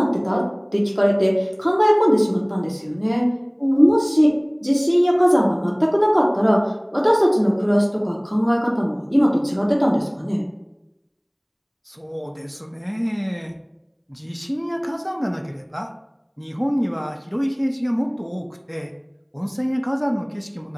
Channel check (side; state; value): both; identical; correlation 1.00